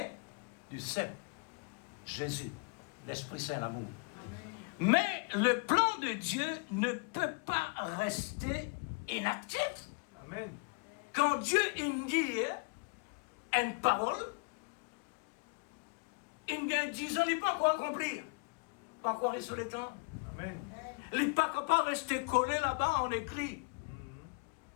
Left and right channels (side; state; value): right; quieter; 33.3 dB